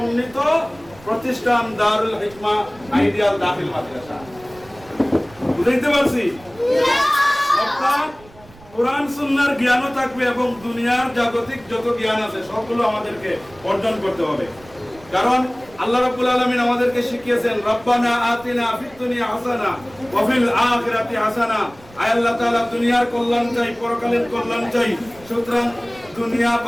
প্রতিষ্ঠান দারুল হিকমা আইডিয়াল দাখিল মাদ্রাসা। বুঝতে পারছি? অর্থাৎ কোরআন সুন্নাহর জ্ঞানও থাকবে এবং দুনিয়ার জাগতিক যত জ্ঞান আছে সবগুলো আমাদেরকে অর্জন করতে হবে। কারণ আল্লাহ রাব্বুল আলামিন আমাদেরকে শিখিয়েছেন, রব্বানা আতিনা ফিদ দুনিয়া হাসানা ওয়া ফিল আখিরাতি হাসানা। আয় আল্লাহ তাআলা দুনিয়ার কল্যাণ চাই, পরকালের কল্যাণ চাই। সুতরাং দুনিয়া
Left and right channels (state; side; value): noise; right; rumble, 23 dB below the sound